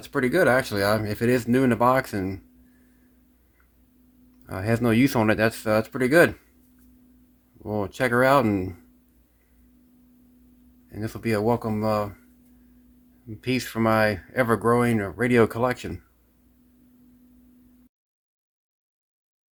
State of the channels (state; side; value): identical; both; correlation 1.00